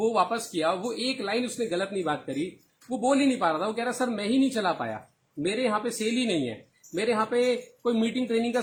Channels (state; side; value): identical; both; correlation 1.00